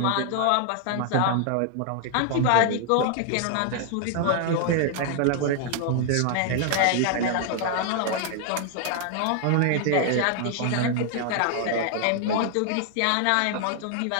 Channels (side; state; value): both; different; correlation 0.00